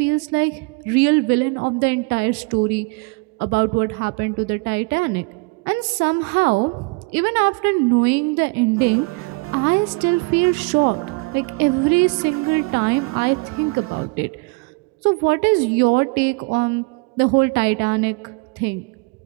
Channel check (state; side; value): quieter; left; 29.4 dB